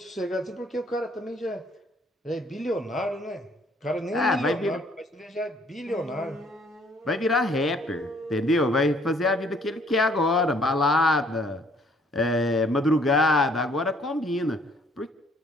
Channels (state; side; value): normal; both; correlation 0.62